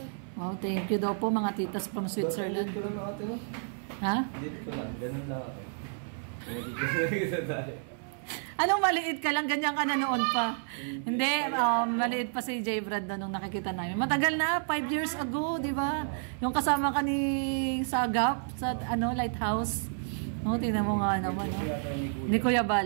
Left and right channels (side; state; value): left; silent; 58 dB below the other